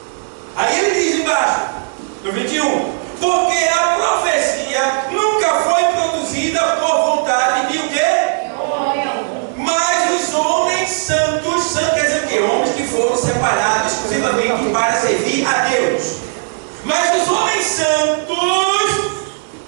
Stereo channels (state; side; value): silent; left; digital silence